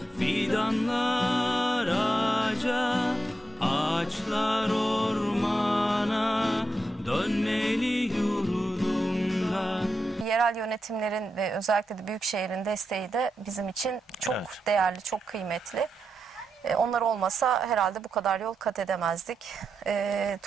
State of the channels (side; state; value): both; normal; correlation 0.86